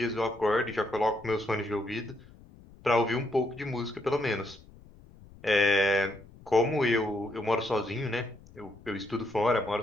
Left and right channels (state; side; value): noise; left; rumble, 23 dB below the sound